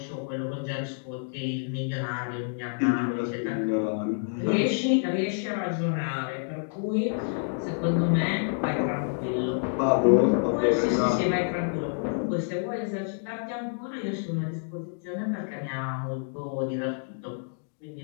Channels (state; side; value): silent; right; digital silence